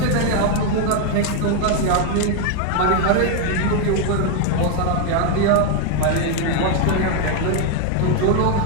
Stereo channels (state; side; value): different; both; correlation 0.01